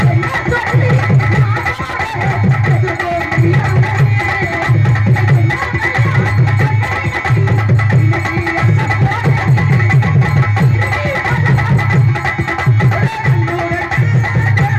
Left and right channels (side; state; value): both; identical; correlation 1.00